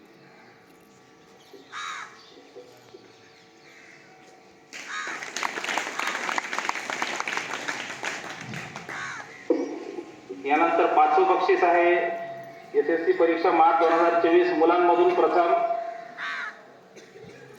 यानंतर पाचवं बक्षीस आहे एसएससी परीक्षा मार्च 2024 मुलांमधून प्रथम.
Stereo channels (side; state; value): both; identical; correlation 1.00